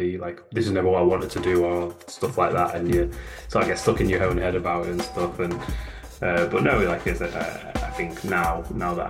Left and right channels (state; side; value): identical; both; correlation 1.00